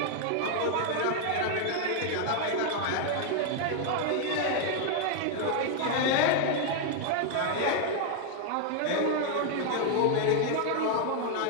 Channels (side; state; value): both; different; correlation 0.00